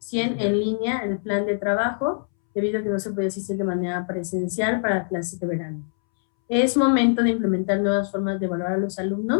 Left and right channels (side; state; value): right; silent; 63 dB below the other